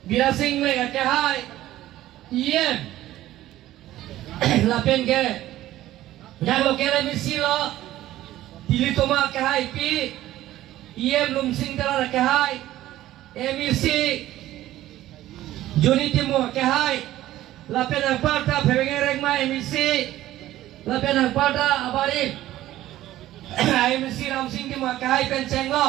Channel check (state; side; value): quieter; left; 14.6 dB